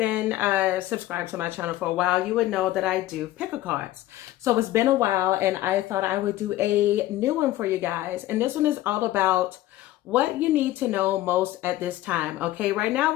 subscribed to my channel for a while, you would know that I do pick a cards. So it's been a while and I thought I would do a new one for you guys. And this one is all about what you need to know most at this time. Okay, right now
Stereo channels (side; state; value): right; quieter; 15.3 dB